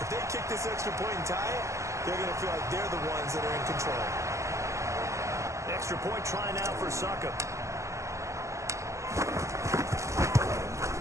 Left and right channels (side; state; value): left; late; 0.15 ms